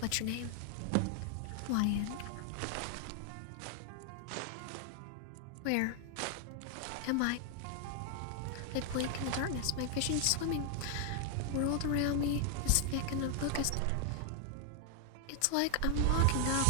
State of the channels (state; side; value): different; both; correlation 0.00